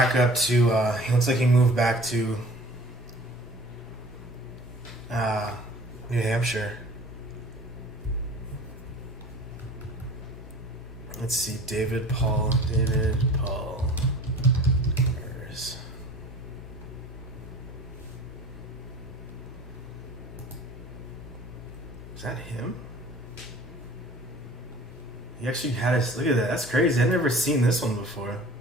up to. New Hampshire. Let's see, David Paul Demers. Is that him? He actually had us. Look at that. That's crazy. I've never seen this one before.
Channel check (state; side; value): normal; both; correlation 0.45